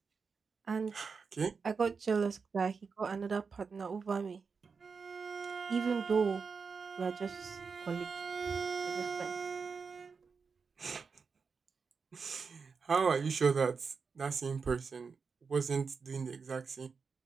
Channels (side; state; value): left; quieter; 5.3 dB